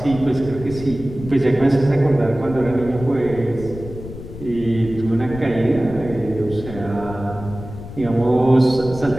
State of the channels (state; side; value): noise; left; rumble, 12 dB below the sound